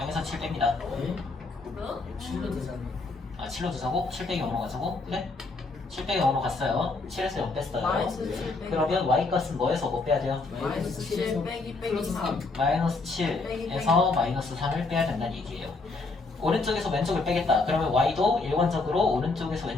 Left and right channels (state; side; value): quieter; right; 3.6 dB